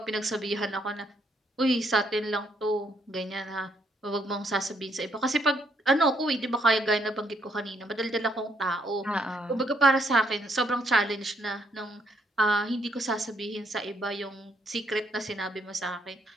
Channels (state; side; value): normal; both; correlation 0.72